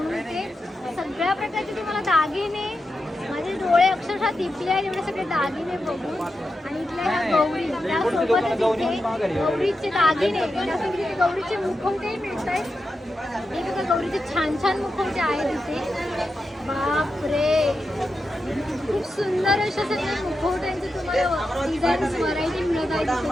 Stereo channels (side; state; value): both; normal; correlation 0.88